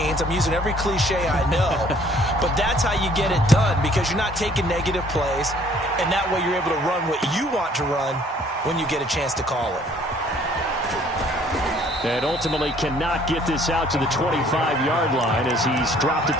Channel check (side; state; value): both; normal; correlation 0.59